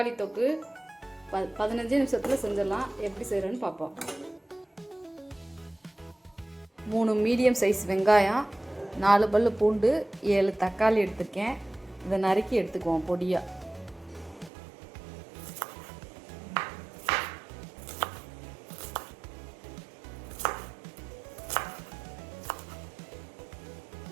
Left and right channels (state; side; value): drops out; left; at 14.5 s